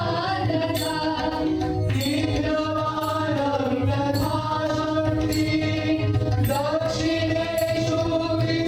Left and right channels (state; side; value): identical; both; correlation 1.00